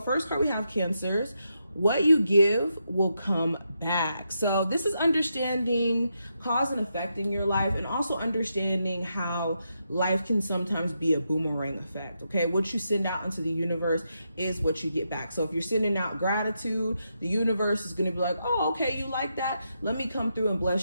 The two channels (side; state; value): both; inverted; correlation -0.83